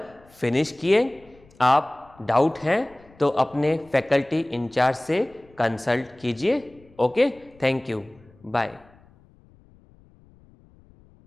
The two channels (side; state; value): left; noise; rumble, 28 dB below the sound